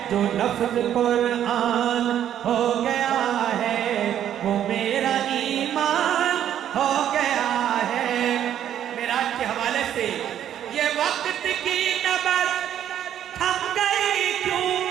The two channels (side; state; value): left; quieter; 10.4 dB